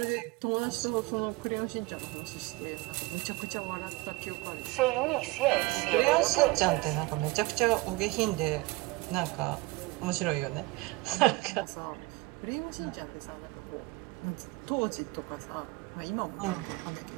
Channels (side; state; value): left; quieter; 21.8 dB